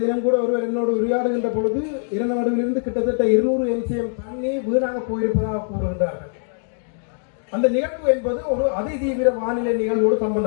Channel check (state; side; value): silent; right; 56 dB below the other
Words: தினம் கூட ஒருவர் என்னோடு உரையாடுகின்ற பொழுது இரநடுவிலிருந்து கிட்டத்தட்ட 200 MCM தண்ணி வீணாக போயிருப்பதாக கூறுகின்றார்கள். அந்த நிகழ்வு என்பது ஒரு அதிதீவிர வானிலை நிகழ்வோடு